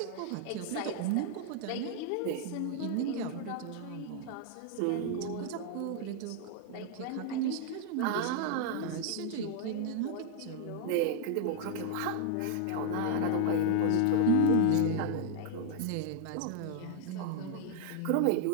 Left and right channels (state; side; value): different; both; correlation 0.00